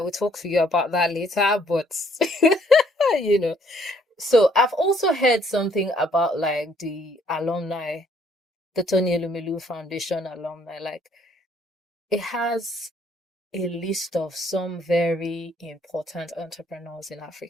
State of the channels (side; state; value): both; normal; correlation 0.65